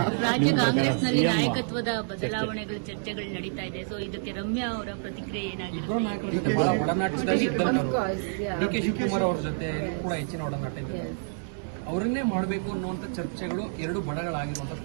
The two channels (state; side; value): silent; left; digital silence